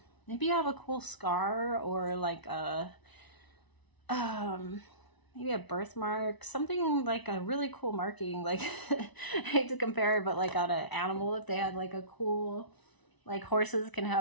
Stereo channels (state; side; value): late; right; 1.0 ms